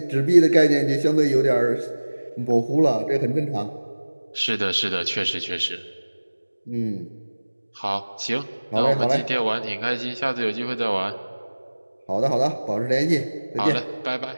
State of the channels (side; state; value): both; inverted; correlation -1.00